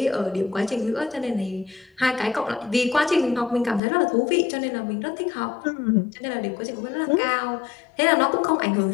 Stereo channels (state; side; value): drops out; right; at 3.8 s